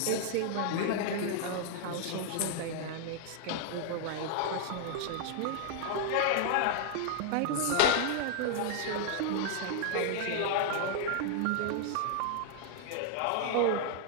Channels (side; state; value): both; different; correlation 0.00